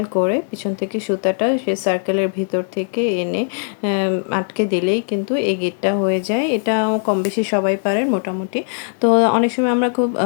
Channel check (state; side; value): silent; right; digital silence